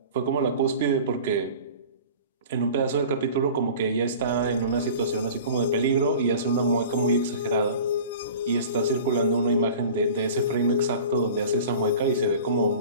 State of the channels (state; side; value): inverted; both; correlation -0.40